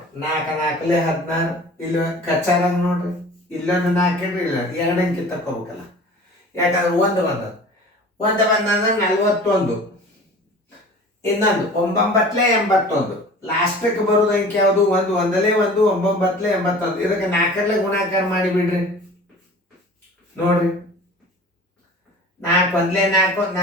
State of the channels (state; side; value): normal; both; correlation 0.42